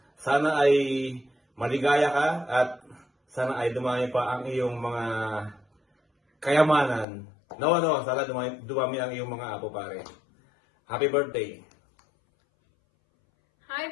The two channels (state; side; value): drops out; right; at 7.1 s